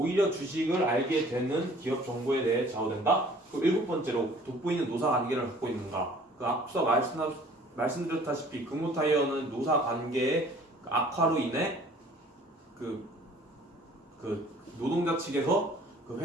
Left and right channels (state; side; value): normal; both; correlation 0.53